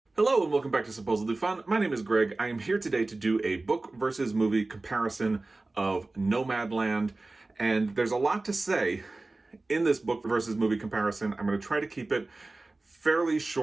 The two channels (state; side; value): quieter; left; 3.2 dB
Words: Hello and welcome back to Supposedly Fun. My name is Greg. I am here today to do a book versus movie comparison of Nomadland. And there's a lot to say in this book versus movie comparison. I'm going to try to keep it fairly